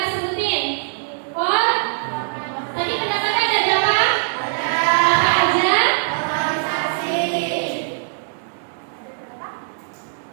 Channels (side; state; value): left; silent; 65 dB below the other